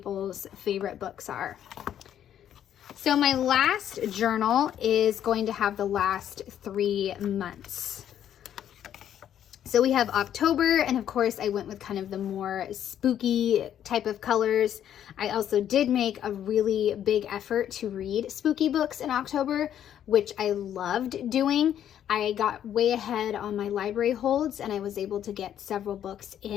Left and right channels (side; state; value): right; quieter; 10.2 dB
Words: favorite books are. So my last journal is going to have the last 3 months. So we have October, and of course I went with kind of the more spooky type of colors. I also did make a really big effort to read spooky books in October, which I loved doing. I got way ahead on my library holds, and I was able to get several books